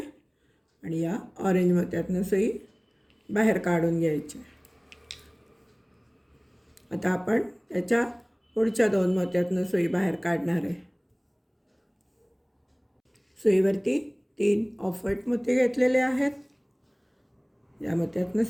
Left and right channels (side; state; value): both; identical; correlation 1.00